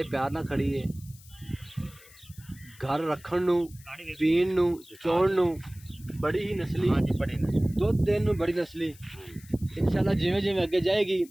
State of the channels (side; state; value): left; noise; hiss, 23 dB below the sound